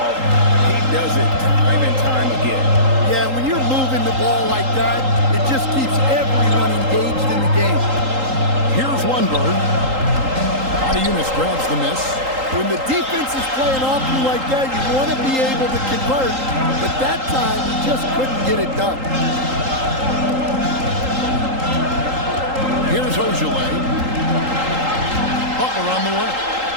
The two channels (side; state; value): left; late; 3.8 ms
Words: He does it time and time again. Yeah, when you're moving the ball like that, it just keeps everyone engaged in the game. Here's Lundberg. Yunus grabs the miss. When the defense is playing off you like that, you want to be able to convert, but that time he just couldn't get it done. Here's Ojale. Butler on the way.